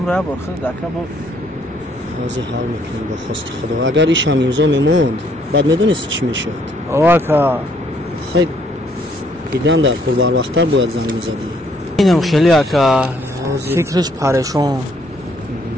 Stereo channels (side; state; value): left; noise; rumble, 26 dB below the sound